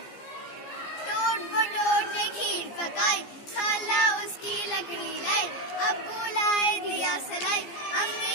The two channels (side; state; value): right; late; 15 ms